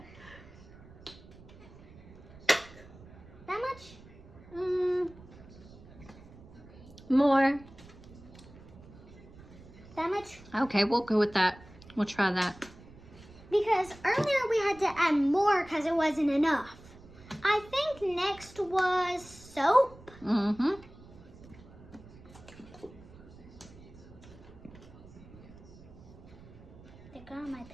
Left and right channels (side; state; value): right; noise; rumble, 20 dB below the sound